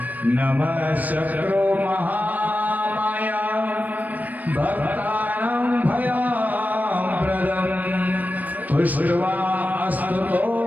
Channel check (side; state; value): left; late; 0.081 ms